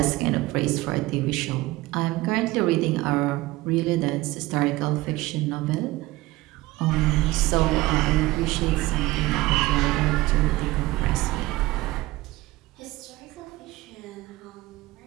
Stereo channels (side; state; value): left; quieter; 19.1 dB